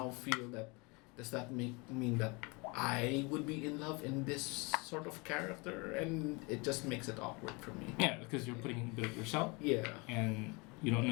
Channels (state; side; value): quieter; right; 28.3 dB